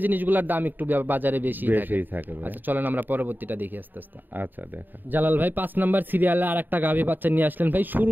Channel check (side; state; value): left; late; 0.090 ms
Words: জিনিসগুলোর দাম একটু বাজারে বেশি থাকে। বেশিই থাকে ভাই। আচ্ছা চলেন আমরা পরবর্তীটা দেখি আস্তে আস্তে। আচ্ছা দেখা। জালাল ভাই 5 নাম্বার সিরিয়ালে আর একটা গাভী বাচ্চা নিয়ে আসলেন ভাই।